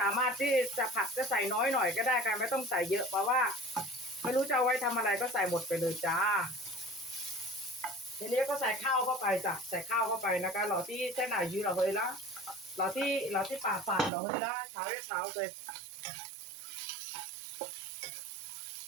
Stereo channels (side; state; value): left; drops out; at 14.1 s